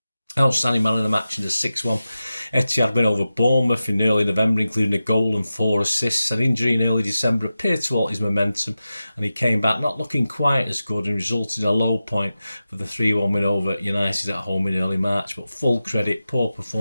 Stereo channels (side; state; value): both; inverted; correlation -0.93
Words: Outstanding man of the match in the 6-1 Etihad win over Bournemouth in early November, including a goal and 4 assists. An injury in early December appeared to halt his momentum, and he came back not looking quite as good and resulted in a low point for the 3-1 win over United at home in early March. But full credit, poor